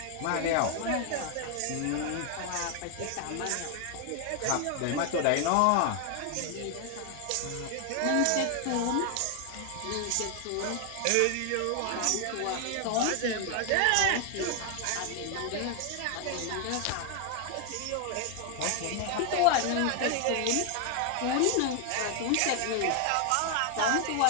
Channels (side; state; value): both; different; correlation 0.00